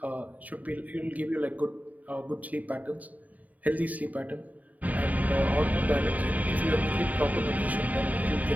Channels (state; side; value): late; left; 0.074 ms